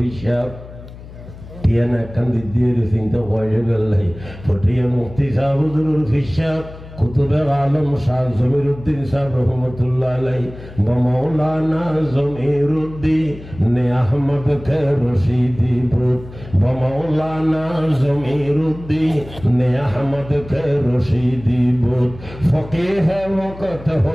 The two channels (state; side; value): noise; left; hum, 16 dB below the sound